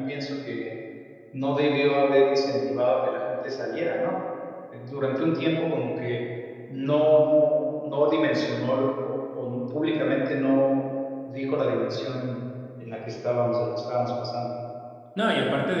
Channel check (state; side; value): identical; both; correlation 1.00